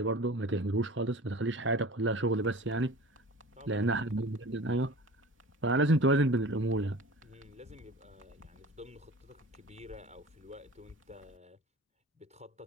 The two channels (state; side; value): normal; both; correlation 0.39